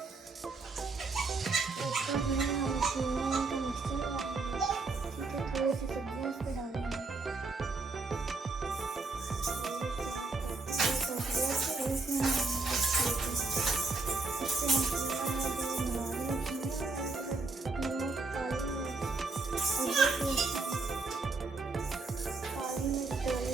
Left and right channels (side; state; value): left; quieter; 3.7 dB